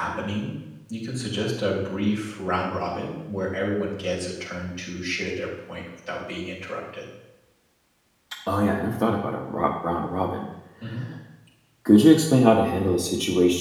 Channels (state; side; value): identical; both; correlation 1.00